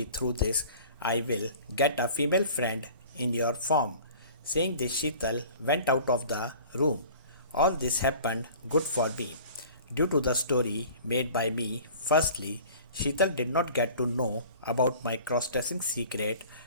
through this I will get a female friend in your form. Saying this, Sheetal went out of the room. All this happened good for me. Due to the story made by me, firstly, Sheetal did not get to know about my cross-dressing secret,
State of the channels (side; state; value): both; inverted; correlation -0.45